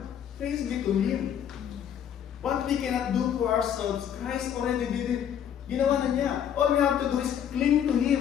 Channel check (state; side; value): quieter; right; 9.2 dB